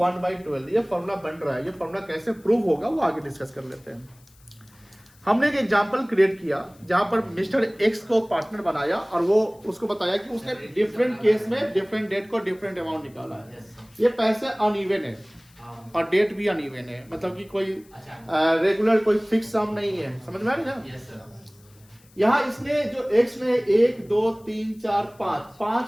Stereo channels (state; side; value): noise; left; hiss, 29 dB below the sound